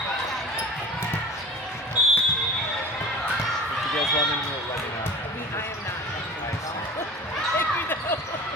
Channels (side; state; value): both; normal; correlation 0.39